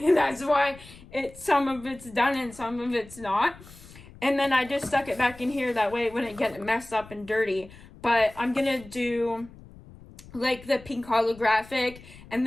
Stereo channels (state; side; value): noise; left; rumble, 20 dB below the sound